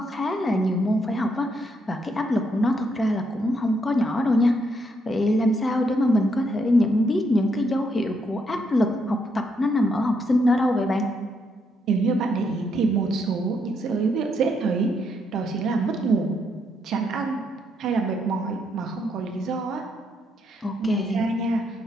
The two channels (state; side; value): normal; both; correlation 0.76